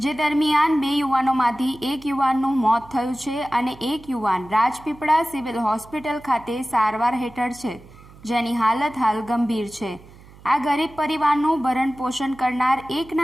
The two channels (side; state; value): right; noise; hum, 22 dB below the sound